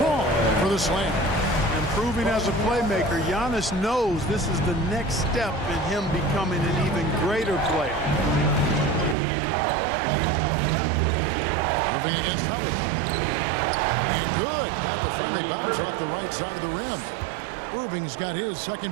for the slam. Improving as a playmaker, Giannis knows this is the next step in him becoming an even greater player. Irving against Howard. And good. Got the friendly bounce off the right side of the rim. Irving's got his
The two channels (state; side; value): drops out; left; at 9.2 s